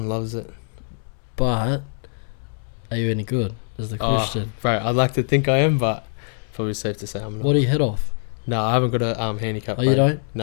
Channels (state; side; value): silent; right; 63 dB below the other